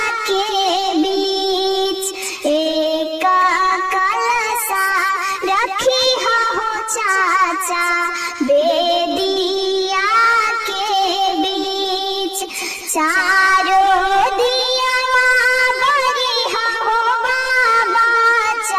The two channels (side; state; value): both; identical; correlation 1.00